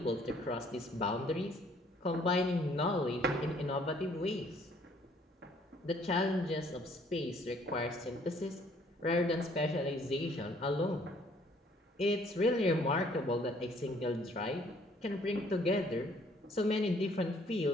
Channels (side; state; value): both; normal; correlation 0.61